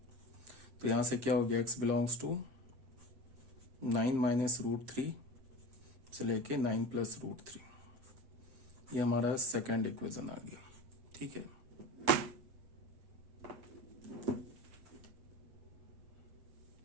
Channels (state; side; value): late; left; 7.6 ms